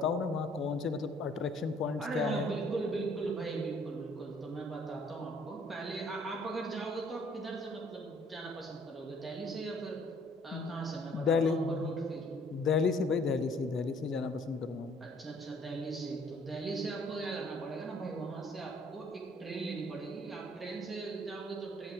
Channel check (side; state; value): both; normal; correlation 0.60